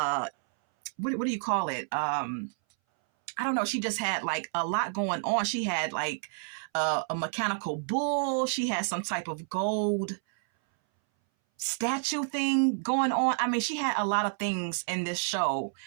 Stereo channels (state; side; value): silent; left; 58 dB below the other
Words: what do you call it? I don't know. She just had like a lot going on. She had like a mechanical bull. She had some type of gold statue thing going on. I mean, she had a lot of things in this show.